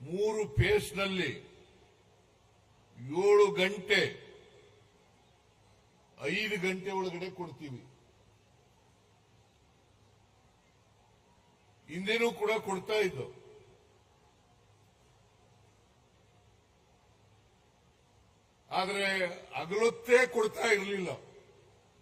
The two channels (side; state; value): both; identical; correlation 1.00